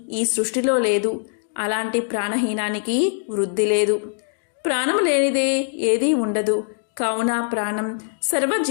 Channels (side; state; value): right; silent; digital silence